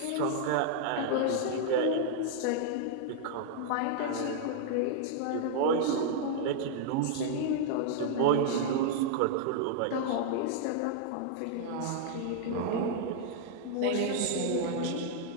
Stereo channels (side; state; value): both; different; correlation -0.01